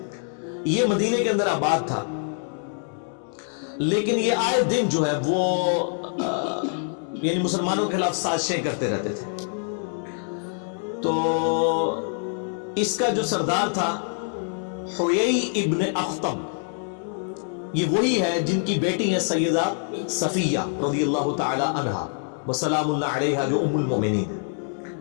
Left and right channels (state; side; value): silent; right; 62 dB below the other